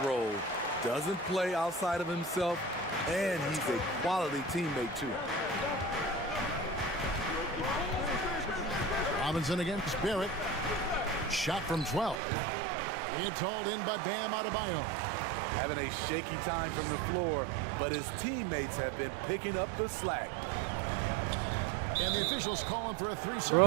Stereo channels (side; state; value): left; drops out; at 12.2 s